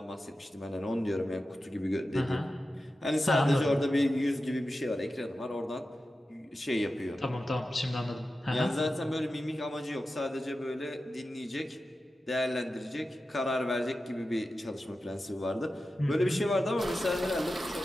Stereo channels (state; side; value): normal; both; correlation 0.92